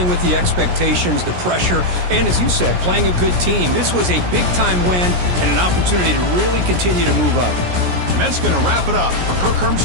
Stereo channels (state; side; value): late; left; 17 ms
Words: with the expectations, the pressure, and as you said, playing a good team. This was a big-time win and an opportunity to really continue to move up. And that's going to wrap it up. For Kirk